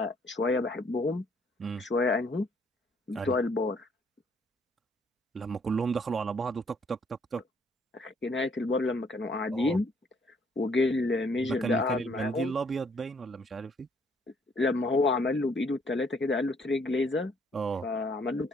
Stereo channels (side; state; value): both; normal; correlation 0.65